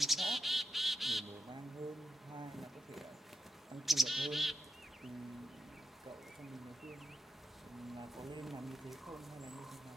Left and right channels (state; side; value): normal; both; correlation 0.88